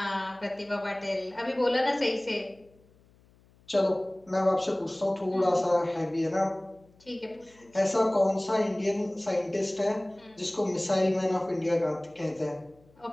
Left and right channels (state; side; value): noise; left; hum, 30 dB below the sound